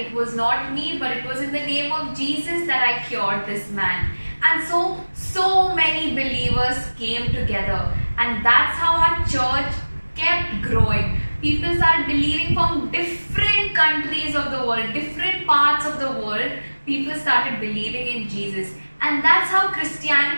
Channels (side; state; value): both; inverted; correlation -1.00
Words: it was not me, but it was in the name of Jesus that I cured this man. And so many believers came together, and that's how our church kept growing. People started believing from different countries of the world, different parts of the world. People started believing in Jesus, and that's how